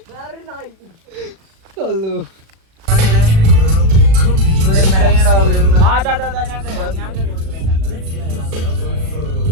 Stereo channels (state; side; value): late; left; 36 ms